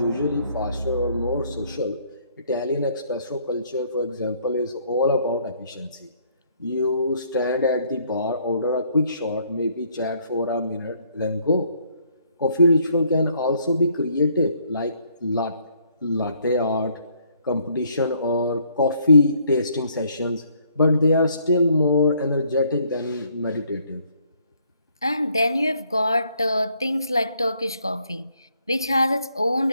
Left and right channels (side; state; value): both; inverted; correlation -0.66